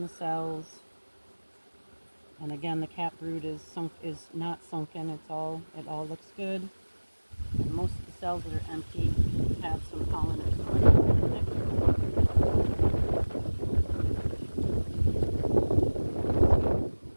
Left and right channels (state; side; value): inverted; both; correlation -1.00